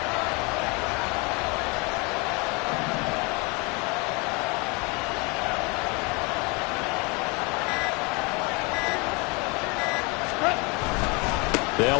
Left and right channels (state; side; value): quieter; right; 29.1 dB